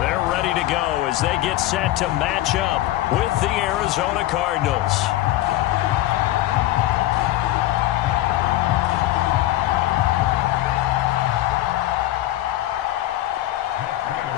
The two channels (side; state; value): right; quieter; 15.3 dB